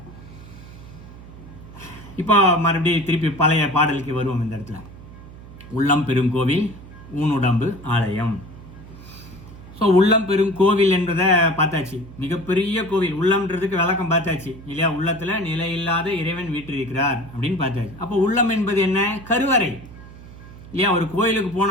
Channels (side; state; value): right; noise; hum, 17 dB below the sound